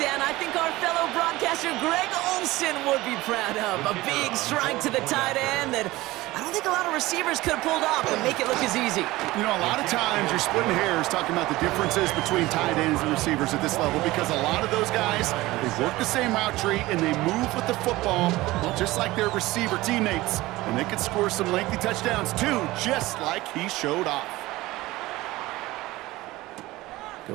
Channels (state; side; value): quieter; left; 18.8 dB